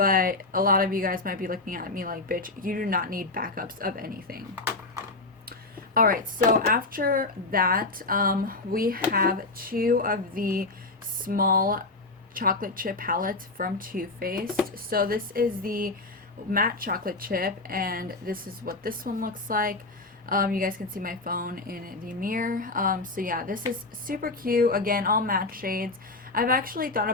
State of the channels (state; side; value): quieter; right; 3.3 dB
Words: a lot of you guys might be looking at me like, bitch, you do not need backups of anything. Alright, so after that, we have two of the small chocolate chip palettes from Too Faced. So this is the matte chocolate chip, and this is what this one looks like. You guys can see my phone in the mirror. So yeah, this is super cute. Again, all matte shades. I've actually thought